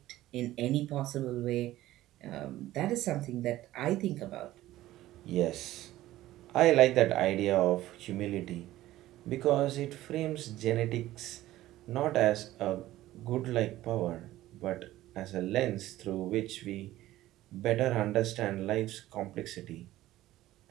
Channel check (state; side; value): quieter; left; 15.3 dB